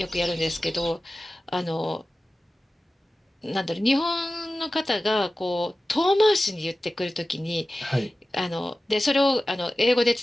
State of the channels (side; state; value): both; normal; correlation 0.96